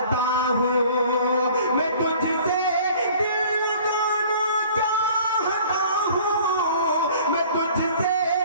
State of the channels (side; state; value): both; inverted; correlation -0.50